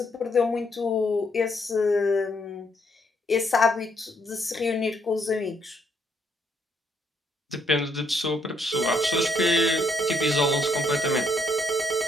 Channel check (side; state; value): both; normal; correlation 0.72